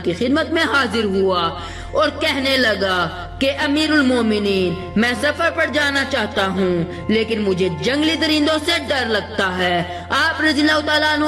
की खिदमत में हाजिर हुआ और कहने लगा कि अमीरुल मोमिनीन, मैं सफर पर जाना चाहता हूँ, लेकिन मुझे जंगली दरिंदों से डर लगता है। आप रज़ियल्लाहु ताला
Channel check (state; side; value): identical; both; correlation 1.00